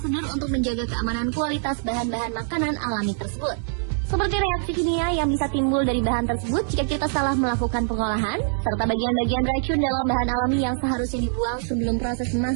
untuk menjaga keamanan kualitas bahan-bahan makanan alami tersebut. Seperti reaksi kimia yang bisa timbul dari bahan tersebut jika kita salah melakukan pengolahan, serta bagian-bagian racun dalam bahan alami yang seharusnya dibuang sebelum proses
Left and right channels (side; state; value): left; silent; digital silence